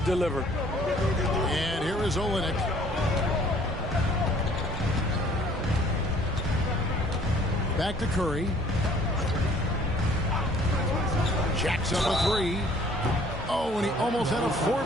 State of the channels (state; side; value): noise; right; hum, 12 dB below the sound